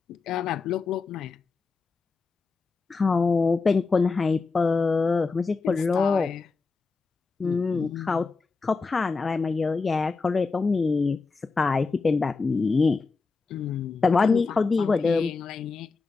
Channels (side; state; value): right; quieter; 4.3 dB